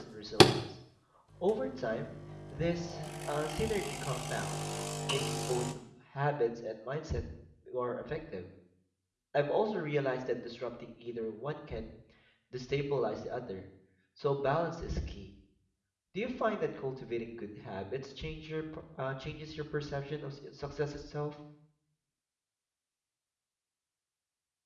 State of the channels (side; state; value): both; identical; correlation 1.00